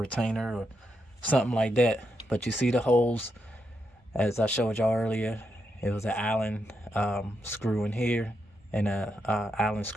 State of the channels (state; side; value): normal; both; correlation 0.83